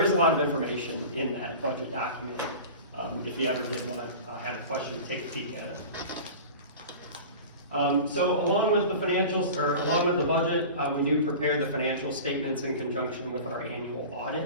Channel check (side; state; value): both; inverted; correlation -0.35